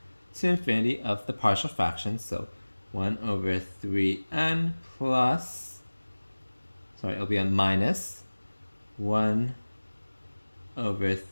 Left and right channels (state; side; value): inverted; both; correlation -1.00